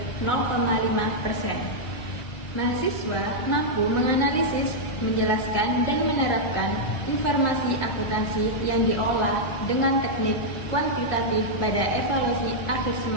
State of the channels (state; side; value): late; right; 1.9 ms